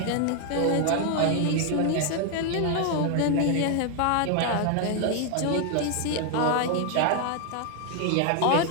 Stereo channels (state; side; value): different; both; correlation 0.00